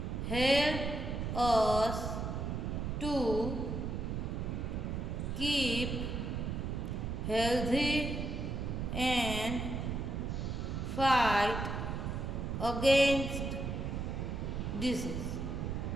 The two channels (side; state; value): right; noise; rumble, 2 dB below the sound